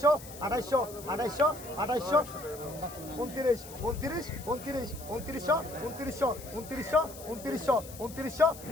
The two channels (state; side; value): noise; left; hiss, 16 dB below the sound